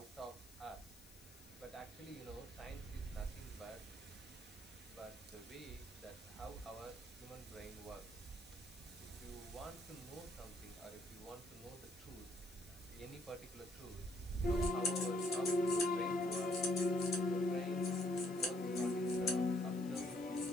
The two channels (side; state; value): left; noise; hiss, 20 dB below the sound